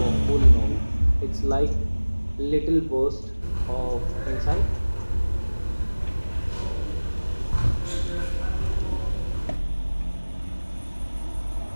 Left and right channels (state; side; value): inverted; both; correlation -1.00